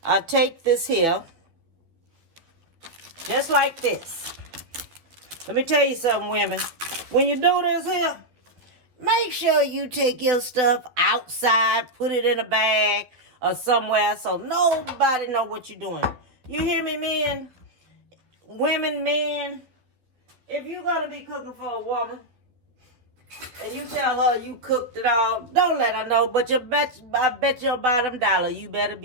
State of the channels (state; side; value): late; left; 12 ms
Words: I take this here, just like this. Let me tell you something, women. When you do this here, make sure you take your stuff outside, put it in a bag or somewhere so nobody know what you're doing. You hear me, men? Women, men, if you're going to be cooking for a woman and you tell her you cooked it all, don't let her know. But I bet your bottom dollar you better